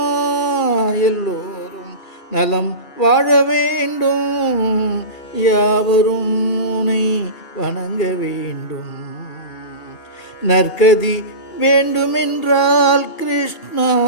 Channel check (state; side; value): late; right; 2.8 ms